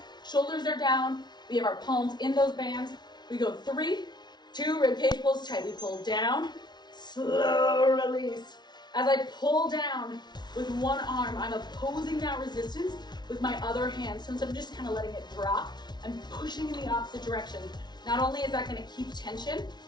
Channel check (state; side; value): late; right; 0.20 ms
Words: Shoulders are down. We have our palms in those bands. We go 3, 2, rib cage pulls tight. We pull down, slow release. As I pull down with one arm, I'm opposing that resistance with my other hand. So instead of just kind of letting it drop, I'm pushing in the opposite direction. Not only is that gonna keep tension